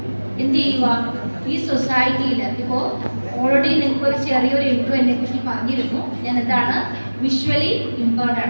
എന്ത് ചെയ്യുക? ഈ സൊസൈറ്റിയിൽ ഇപ്പോൾ ഓൾറെഡി നിങ്ങൾക്ക് ഒരു ചെറിയൊരു ഇൻട്രോ എന്നെ കുറിച്ച് പറഞ്ഞിരുന്നു. ഞാൻ എന്താണ് വിഷ്വലി ഇമ്പയർഡ്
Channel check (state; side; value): inverted; both; correlation -1.00